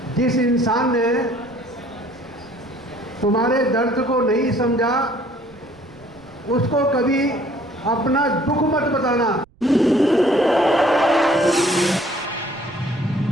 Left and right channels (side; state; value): right; noise; rumble, 29 dB below the sound